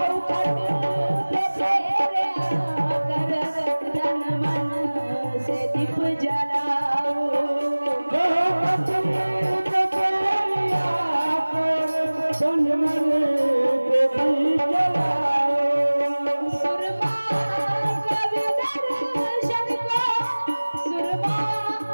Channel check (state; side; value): inverted; both; correlation -1.00